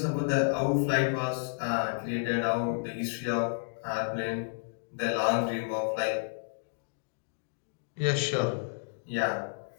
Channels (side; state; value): right; silent; digital silence